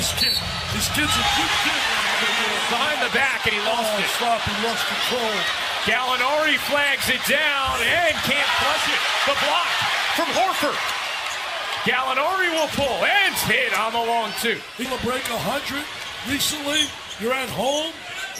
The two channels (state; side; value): identical; both; correlation 1.00